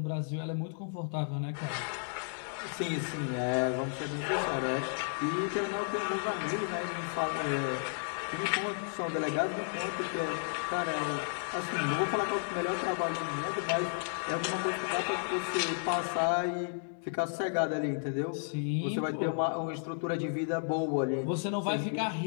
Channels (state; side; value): silent; right; digital silence